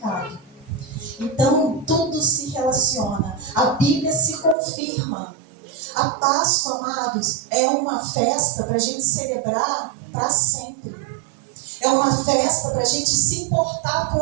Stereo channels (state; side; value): drops out; left; at 4.5 s